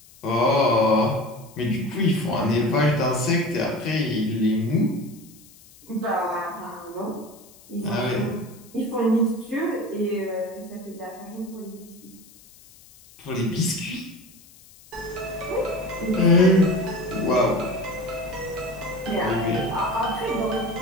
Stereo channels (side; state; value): left; noise; hiss, 24 dB below the sound